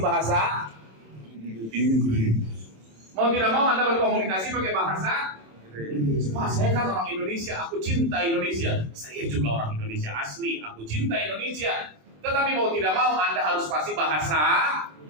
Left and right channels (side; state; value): left; late; 27 ms